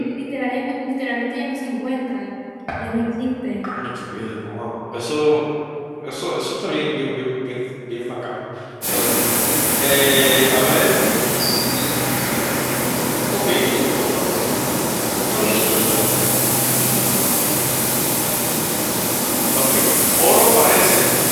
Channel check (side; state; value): both; identical; correlation 1.00